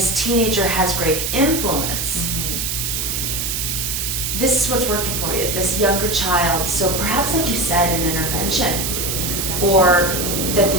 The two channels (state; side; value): noise; right; hiss, 1 dB below the sound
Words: teenager has great influence, this is what's working for you, this younger child. So perhaps, like you said, an intervention. Or that